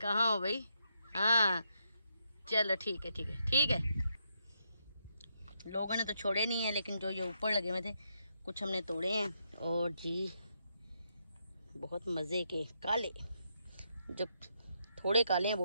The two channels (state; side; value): inverted; both; correlation -0.79